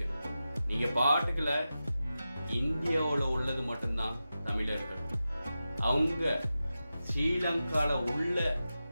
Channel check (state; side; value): inverted; both; correlation -0.92